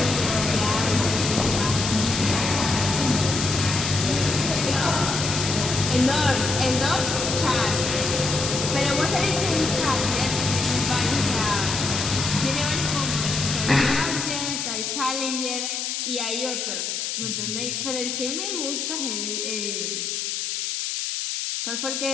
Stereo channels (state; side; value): noise; left; hiss, 2 dB below the sound